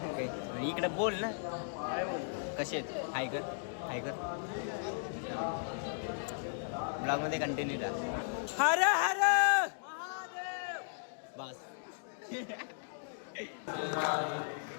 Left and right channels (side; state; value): right; silent; digital silence